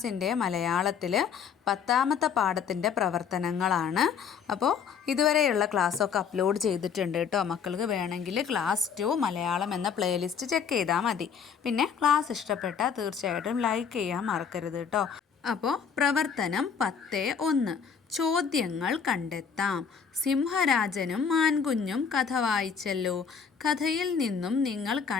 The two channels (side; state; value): right; quieter; 6.7 dB